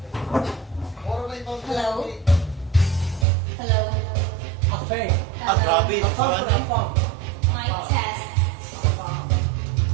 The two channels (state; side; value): drops out; left; at 3.2 s